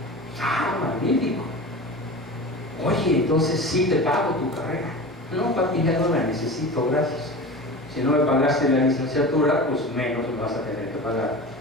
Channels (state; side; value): normal; both; correlation 0.32